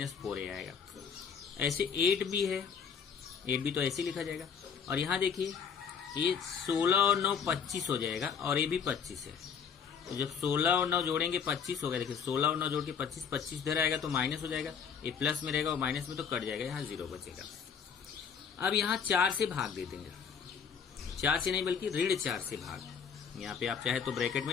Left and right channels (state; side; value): quieter; right; 6.9 dB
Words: 4a आएगा। ऐसे 8b है, 8b तो ऐसे लिखा जाएगा। और यहाँ देखिए ये 16 और 9 25 हो जाएगा, और ये भी 25 है। तो जब 16 और 9 जोड़ेंगे 25 होगा। देखिए 16 और 9 जोड़ के 25 इधर आएगा तो माइनस हो जाएगा, ये प्लस में रहेगा और माइनस में तो कट जाएगा, यहाँ 0 बचेगा। अब यहाँ 4 से भाग दे देंगे, 4 से नहीं बल्कि ऋण 4 से भाग। यहाँ पे आप चाहे तो ब्रैकेट में